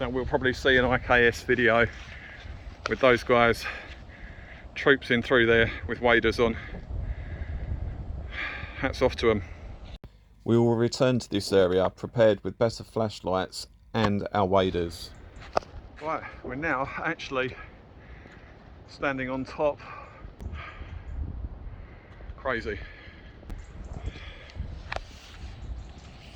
we'll probably see an IKS video with those guys troopsing through there with waders on. Hats off to them. We will return to this area prepared with better flashlights and our waders. Right, we're now actually standing on top. Crazy.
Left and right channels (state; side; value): identical; both; correlation 1.00